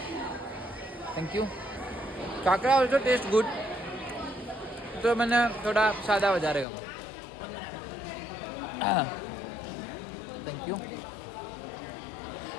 thank you khakhra also taste good તો મને થોડા સાદા વધારે ગમે થેન્ક યુ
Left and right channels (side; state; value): right; drops out; at 6.7 s